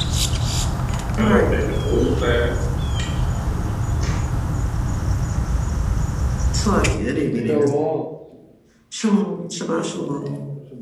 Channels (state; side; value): identical; both; correlation 1.00